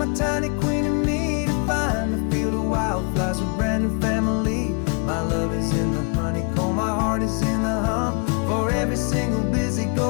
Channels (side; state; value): right; quieter; 35.7 dB